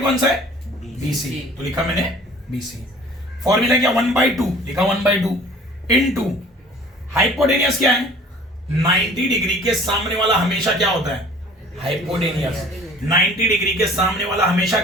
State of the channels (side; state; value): both; normal; correlation 0.49